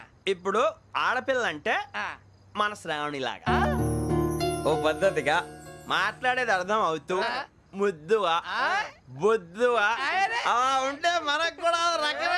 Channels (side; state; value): both; identical; correlation 1.00